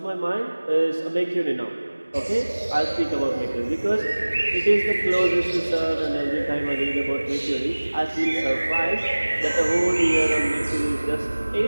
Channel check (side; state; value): both; inverted; correlation -1.00